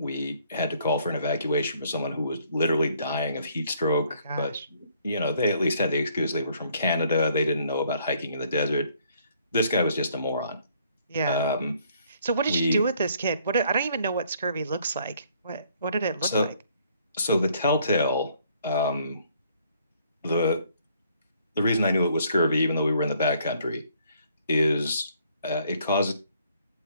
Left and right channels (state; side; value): inverted; both; correlation -0.64